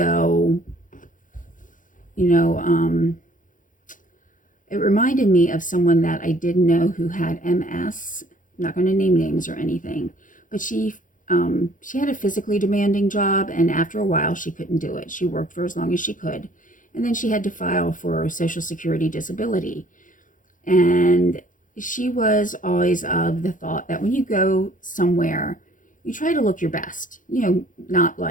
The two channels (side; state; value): right; late; 0.38 ms